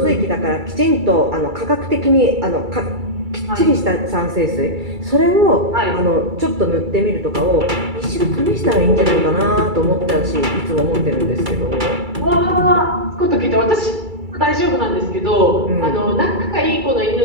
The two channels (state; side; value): late; left; 2.3 ms